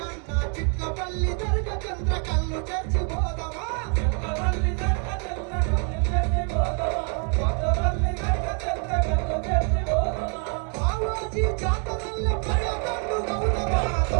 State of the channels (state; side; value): quieter; left; 39.8 dB